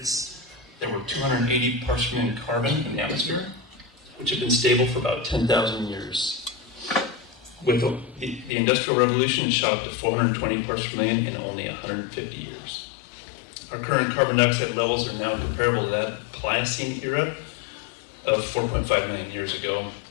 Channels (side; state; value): right; drops out; at 8.5 s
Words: there were 280 parts per million carbon in the atmosphere, which had been stable for about 10,000 years. With the Industrial Revolution, it shot up to 420 parts per million in only 150 years. Our current carbon dioxide levels are now comparable to that Pliocene era of 4.5 million years ago,